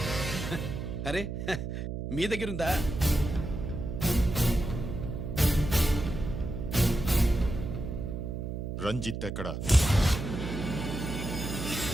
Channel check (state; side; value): noise; right; hum, 4 dB below the sound